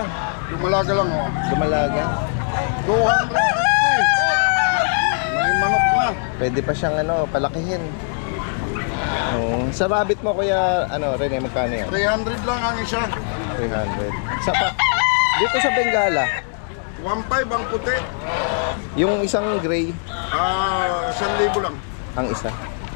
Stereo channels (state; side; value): silent; right; digital silence